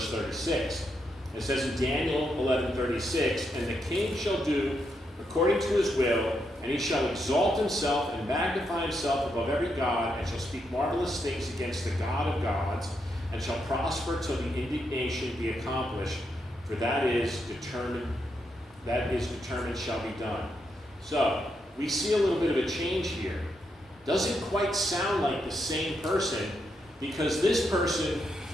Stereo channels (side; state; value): both; normal; correlation 0.81